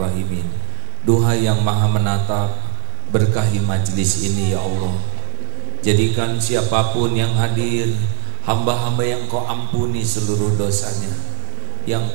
Duha yang maha menatap, berkahi majlis ini ya Allah. Jadikan siapapun yang hadir hamba-hamba yang kau ampuni seluruh dosanya, yang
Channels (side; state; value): left; silent; 61 dB below the other